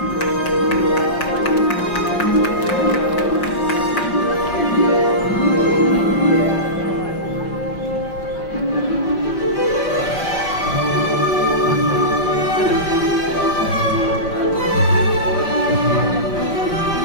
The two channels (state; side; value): late; right; 5.6 ms